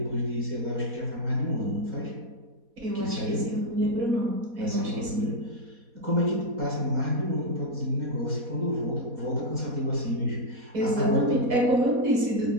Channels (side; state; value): left; late; 4.2 ms